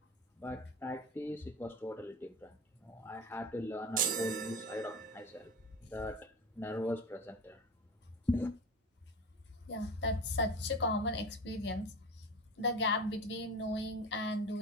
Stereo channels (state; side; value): normal; both; correlation 0.30